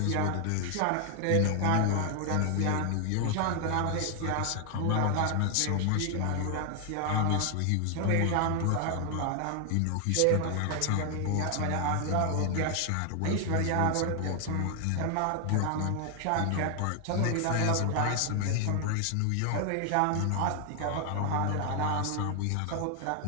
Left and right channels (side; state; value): both; different; correlation 0.00